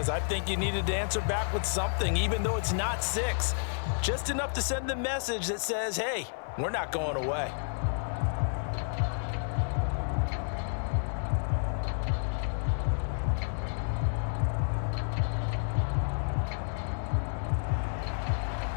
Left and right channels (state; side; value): silent; right; 57 dB below the other